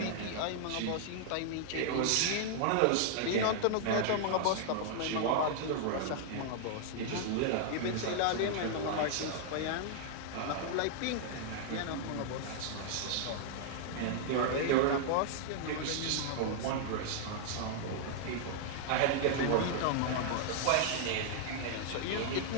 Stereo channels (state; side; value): different; both; correlation -0.01